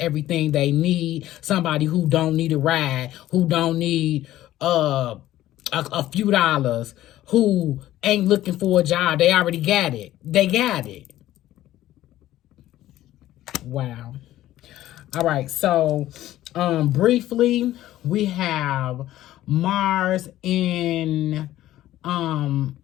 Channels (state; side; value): quieter; right; 14.2 dB